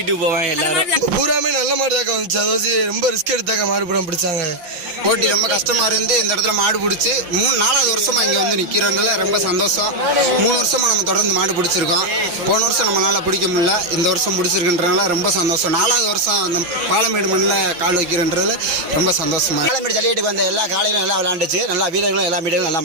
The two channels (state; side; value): late; left; 5.7 ms